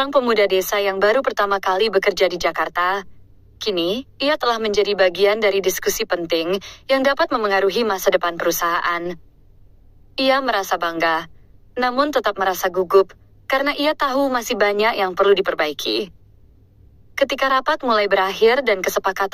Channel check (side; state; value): both; identical; correlation 1.00